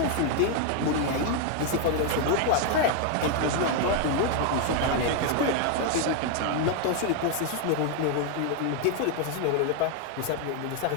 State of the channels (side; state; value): both; different; correlation 0.01